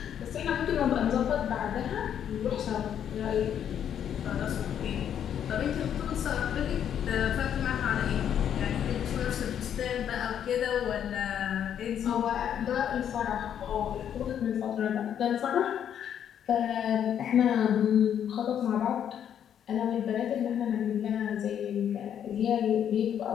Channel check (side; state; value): right; quieter; 9.3 dB